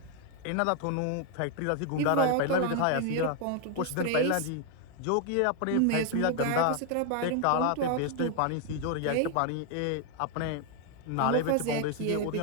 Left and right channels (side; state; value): both; different; correlation 0.00